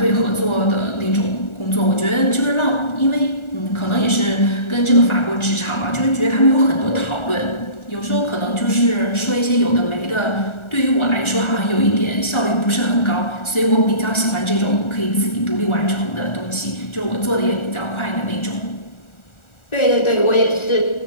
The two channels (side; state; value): right; late; 1.4 ms